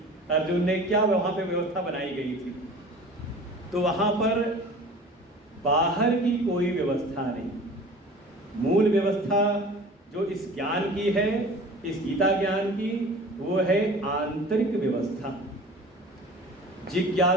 अर्जुन ने, क्या वहाँ पे व्यवस्था बनाई गई थी। तो वहाँ पर बाहर की कोई व्यवस्था नहीं, मूल व्यवस्था जो इस ज्ञान की है, इस गीता ज्ञान की, वो है आंतरिक व्यवस्था।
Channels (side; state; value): both; normal; correlation 0.42